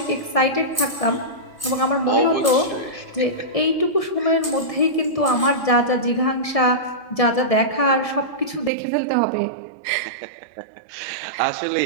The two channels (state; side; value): drops out; left; at 8.7 s